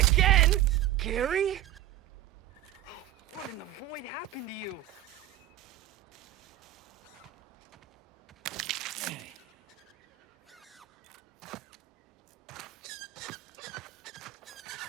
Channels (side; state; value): left; quieter; 13.1 dB